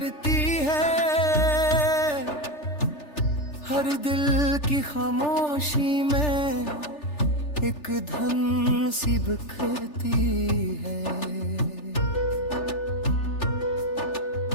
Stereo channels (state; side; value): late; right; 3.4 ms